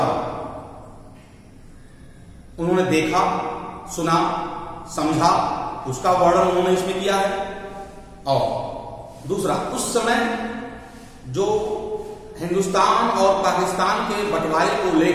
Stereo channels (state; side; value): identical; both; correlation 1.00